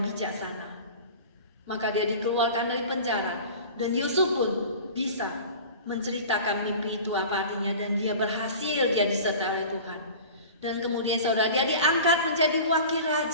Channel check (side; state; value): both; inverted; correlation -0.38